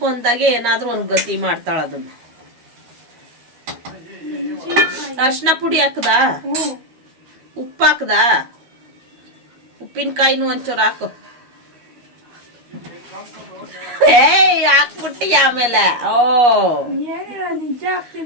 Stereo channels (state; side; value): late; left; 12 ms